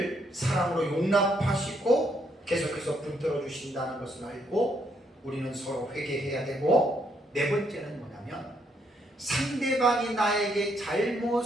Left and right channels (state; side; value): normal; both; correlation 0.73